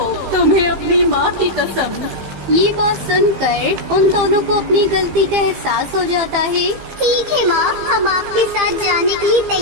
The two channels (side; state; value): left; late; 15 ms